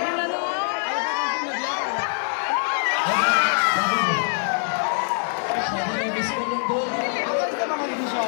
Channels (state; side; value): silent; right; 63 dB below the other